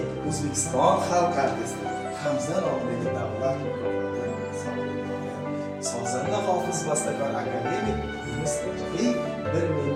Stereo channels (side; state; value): both; identical; correlation 1.00